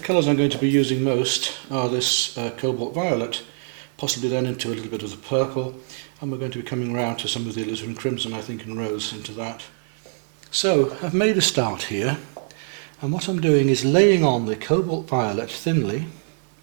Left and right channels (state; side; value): silent; left; 63 dB below the other